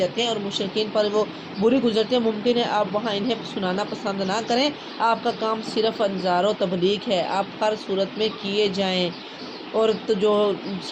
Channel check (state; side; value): identical; both; correlation 1.00